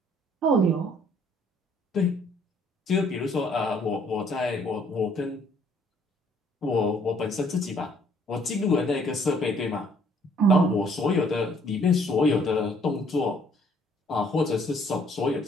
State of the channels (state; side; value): normal; both; correlation 0.62